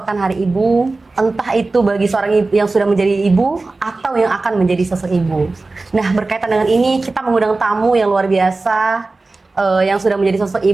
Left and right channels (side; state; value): left; quieter; 3.4 dB